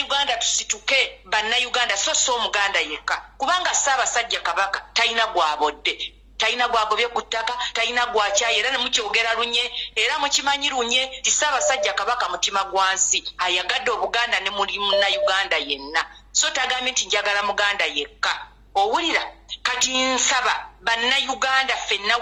tusituke bannayuganda so omuganda yekka kubanga Ssaabasajja Kabaka talina gwabodde talina gwagobye ku ttaka talina gwakyayi era ne mukyogera lunye era mukimanyi lunye ti Ssaabasajja Kabaka mutima gwansi ayagadde Obuganda ne muli munnayuganda yenna so tagambye nti njagala muganda yekka owulira kati nsaba bannayuganda ffenna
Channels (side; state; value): both; identical; correlation 1.00